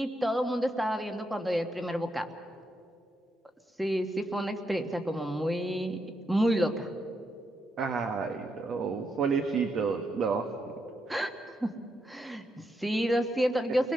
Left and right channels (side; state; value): both; normal; correlation 0.81